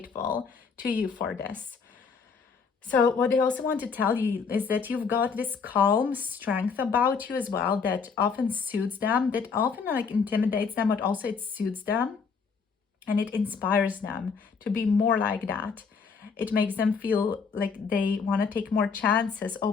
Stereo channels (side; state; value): right; quieter; 5.5 dB